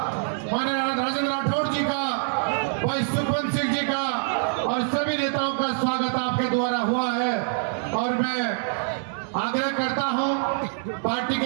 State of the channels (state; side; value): silent; left; digital silence